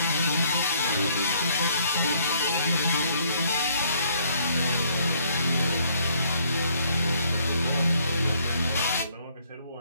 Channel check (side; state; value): both; inverted; correlation -0.65